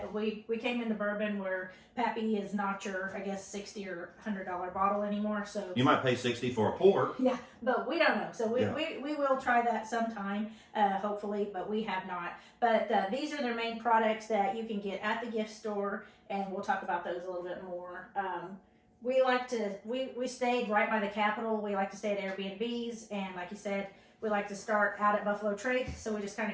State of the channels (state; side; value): identical; both; correlation 1.00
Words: We came into bourbon where Pappy is not your, I guess, $60 or $100 bottle anymore. So you might pay $60 for a pour. Yeah, but we don't know. So we will try that sometime, hopefully, but we have not. But these are their main products that you can get at the gift store, and we'll talk about those a little bit more. We stayed right by the Capitol. We like to stay at Airbnbs, and like you said, we like to start out at Buffalo Trace, so we just kind